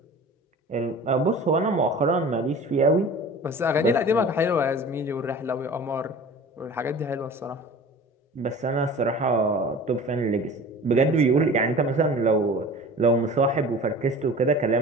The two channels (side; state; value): both; normal; correlation 0.40